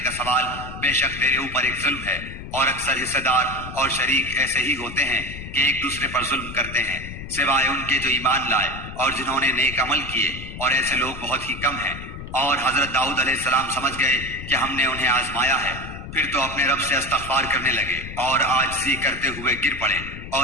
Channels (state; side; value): noise; left; rumble, 11 dB below the sound